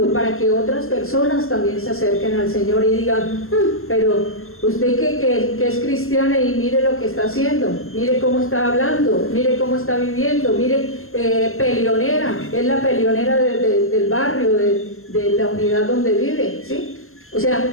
para que otras personas también se acerquen al Señor y digan, pero usted que es cristiana y mire lo que está haciendo, mire cómo está hablando, mire cómo está viviendo, mire, peleonera, es la peleonera del barrio, de la unidad donde vive, ¿sí? O sea,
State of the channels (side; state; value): right; late; 0.62 ms